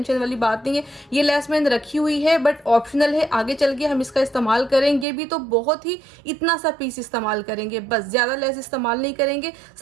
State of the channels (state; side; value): drops out; left; at 5.1 s